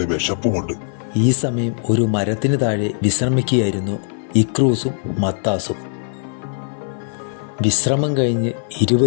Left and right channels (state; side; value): silent; right; 55 dB below the other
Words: വിശപ്പുമുണ്ട്. ഈ സമയം ഒരു മരത്തിന് താഴെ വിശ്രമിക്കുകയായിരുന്നു ഇക്രൂസും മത്താസും. വിശ്രമം കഴിഞ്ഞ്